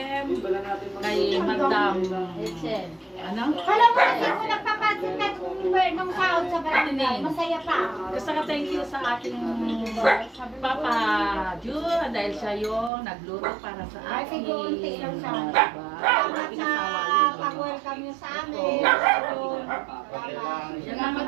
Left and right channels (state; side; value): drops out; left; at 12.9 s